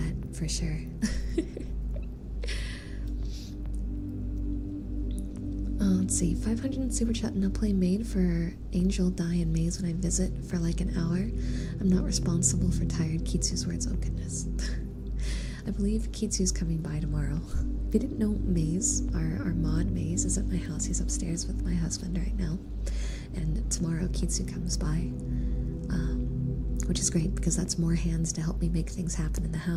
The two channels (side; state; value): both; identical; correlation 1.00